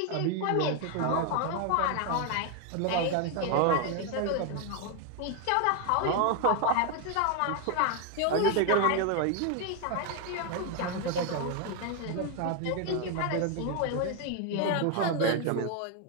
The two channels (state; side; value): different; both; correlation 0.01